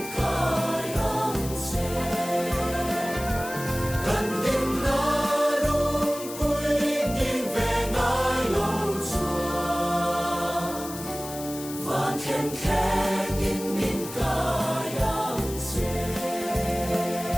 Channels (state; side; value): noise; left; hiss, 12 dB below the sound